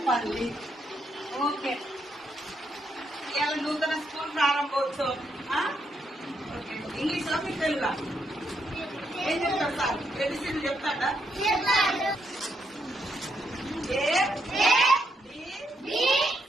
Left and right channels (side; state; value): both; normal; correlation 0.78